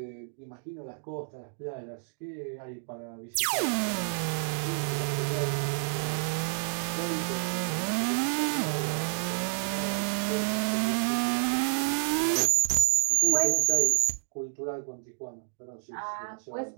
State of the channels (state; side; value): silent; left; digital silence